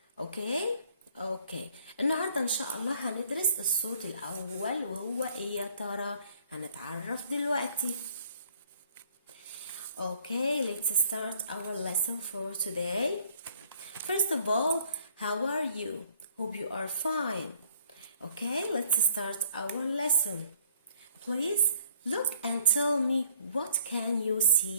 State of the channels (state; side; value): inverted; both; correlation -0.59